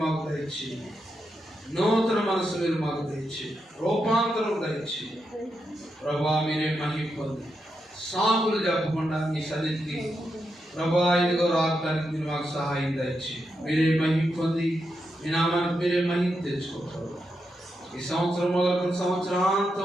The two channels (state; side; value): normal; both; correlation 0.85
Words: మాకు దయచేయండి. నూతన మనసు మీరు మాకు దయచేయండి. రూపాంతరం దయచేయండి ప్రభా. మీరే మహిమ పొంది సాకులు చెప్పకుండా మీ సన్నిధికి ప్రభా ఇదిగో రావడానికి మీరు మాకు సహాయం దయచేయండి. మీరే మహిమ పొంది మీ నామానికి మీరే మహిమ తెచ్చుకోవాలి. ఈ సంవత్సరం మొదలుకొని